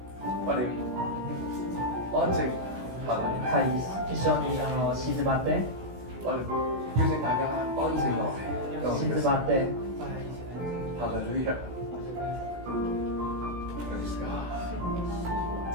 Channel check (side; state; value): left; late; 16 ms